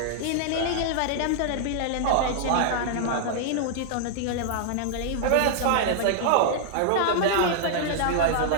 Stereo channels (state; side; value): different; both; correlation -0.01